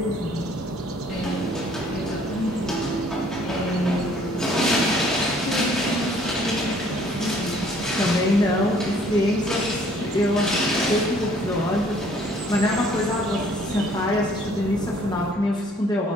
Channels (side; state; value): both; normal; correlation 0.59